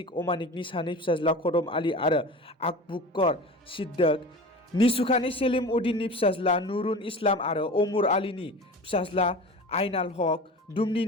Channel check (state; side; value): normal; both; correlation 0.34